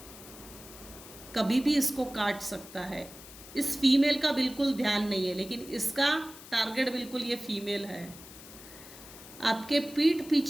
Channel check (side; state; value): left; noise; hiss, 17 dB below the sound